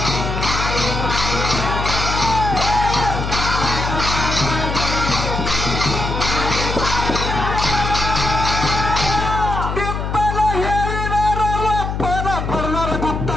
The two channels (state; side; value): noise; left; hum, 3 dB below the sound